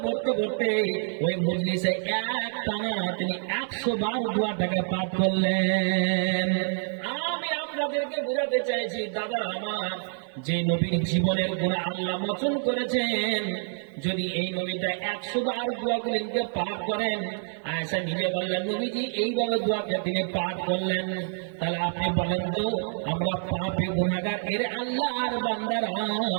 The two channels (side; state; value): left; silent; 60 dB below the other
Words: পড়তে পড়তে ওই মজলিসে এক টানা তিনি 100 বার দোয়াটাকে পাঠ করলেন। আমি আপনাদেরকে বোঝাতে চাইছি দাদা আমার, যে নবীর জীবনের গুনাহ আল্লাহ মোচন করেছেন, যদি এই নবীটা 100 বার দোয়াগুলিকে পাঠ করেন, আয়েশা নিজে বললেন নবীজি এইভাবে দোয়াকে তিনি পাঠ করলেন, তাহলে আপনি বলেন তো আমরা পাপী গুনাহগার এর আল্লাহর বান্দারা,